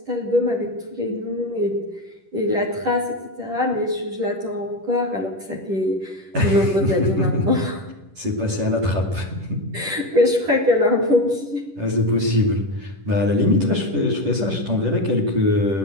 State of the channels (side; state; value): left; late; 10 ms